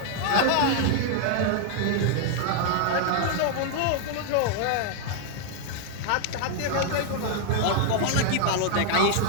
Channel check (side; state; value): both; different; correlation 0.00